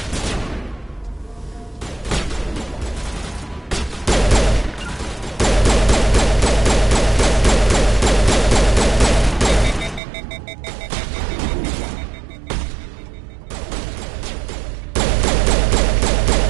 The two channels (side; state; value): left; drops out; at 10.0 s